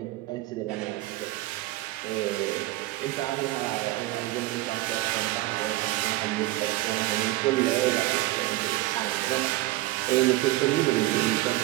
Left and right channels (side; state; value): left; quieter; 17.7 dB